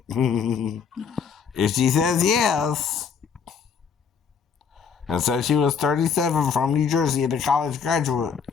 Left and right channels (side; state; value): right; quieter; 6.4 dB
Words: If she says yes, and says she was 37 from New Jersey and a college graduate,